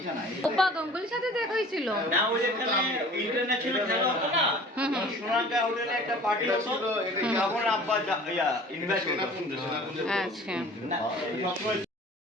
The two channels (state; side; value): normal; both; correlation 0.46